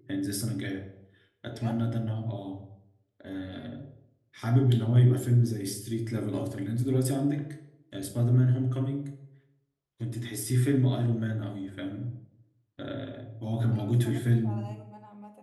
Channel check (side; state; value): both; identical; correlation 1.00